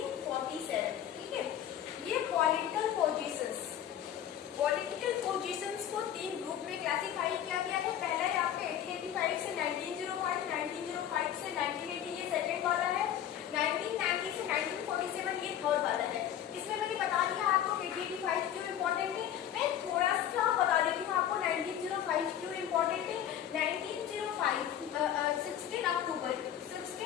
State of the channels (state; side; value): quieter; right; 10.4 dB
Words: ठीक है। ये पॉलिटिकल पोजीशंस को 3 ग्रुप में क्लासिफाई किया गया है। पहला है आपका 1885 से 1905, 1905 से 1980 ये सेकेंड वाला है, 1990 से 1947 ये थर्ड वाला है। इसमें मैंने बता दिया आपको 1885 क्यों इम्पोर्टेंट है। मैं थोड़ा सा बता देती हूँ आपको 1905 क्यों इम्पोर्टेंट है। 1905 16 अक्टूबर